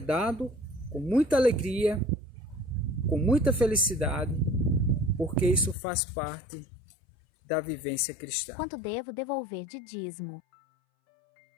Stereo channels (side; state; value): right; drops out; at 5.8 s